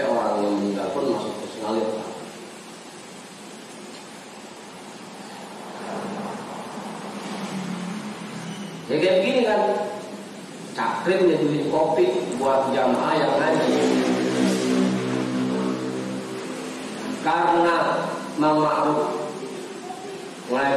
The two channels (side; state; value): both; identical; correlation 1.00